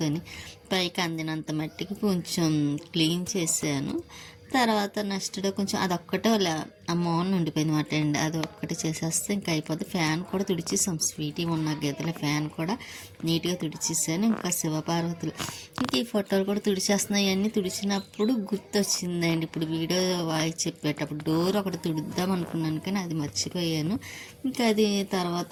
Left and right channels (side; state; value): both; identical; correlation 1.00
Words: పైకి అందినంత మట్టికి కొంచెం క్లీన్ చేశాను. తర్వాత నెక్స్ట్ డే కొంచెం అదొక్కటే ఆ మోన్ ఉండిపోయింది మాట అండి. అది ఒక్కటి చేసేస్తే ఇంకా అయిపోద్ది. ఫ్యాన్ కూడా తుడిచేసాం, స్వీటీ ఉన్న గదిల ఫ్యాన్ కూడా నీట్గా తుడిచేసాను. ఇంకా శివపార్వతులు ఇంకా ఈ ఫోటోలు కూడా తుడిచేస్తున్నాయి. అన్నీ తుడిచినప్పుడు గుర్తొచ్చిందండి. ఇప్పుడు వీడియో వాయిస్ చెప్పేటప్పుడు డోర్ ఒకటి తుడుద్దాం అనుకున్నాను కానీ అది మర్చిపోయాను. ఇంకా అది తర్వాత